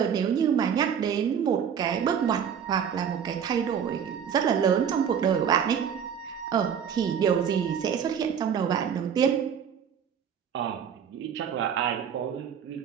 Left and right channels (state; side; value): quieter; left; 7.9 dB